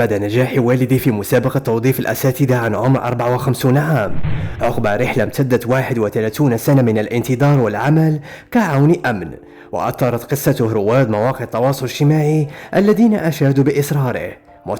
نجاح والده في مسابقة توظيف الأساتذة عن عمر 54 عام عقب رحلة امتدت 31 سنة من الانتظار والعمل كعون أمن. وأثارت قصته رواد مواقع التواصل الاجتماعي الذين أشادوا بإصراره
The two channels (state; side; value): identical; both; correlation 1.00